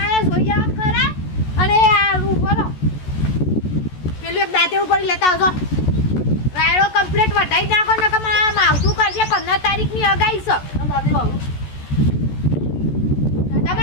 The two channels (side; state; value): right; late; 14 ms